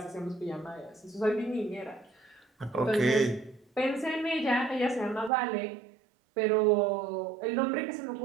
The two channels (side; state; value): left; drops out; at 5.3 s